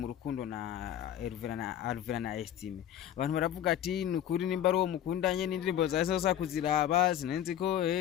rukundo na Alvera na Estime abantu baravuga ati nukuri nimba ari uwo mukundanye n'indirimbo zaza kuziraba sinenzi ko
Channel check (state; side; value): quieter; right; 10.7 dB